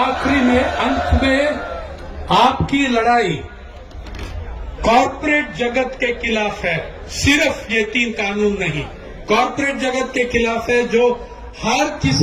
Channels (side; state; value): both; identical; correlation 1.00